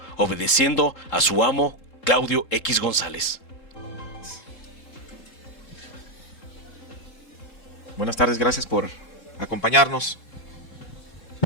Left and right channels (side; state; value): right; late; 3.8 ms